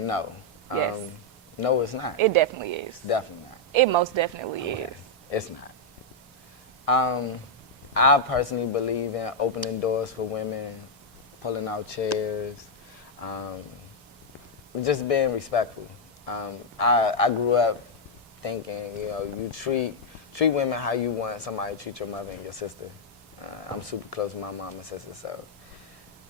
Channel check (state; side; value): normal; both; correlation -0.03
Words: Yes. No, it's not. It definitely is. It's definitely not. It most definitely is. It's not. I personally believe in opening doors for women, pulling out chairs, just being respectful. I grew up thinking, you treat women how you want somebody to treat your mother and your sister. I'm super close with my mom and sister, so